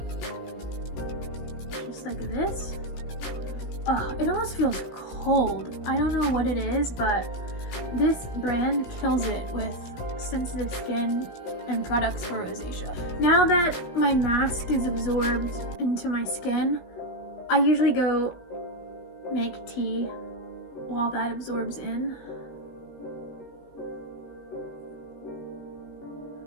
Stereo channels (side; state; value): right; late; 17 ms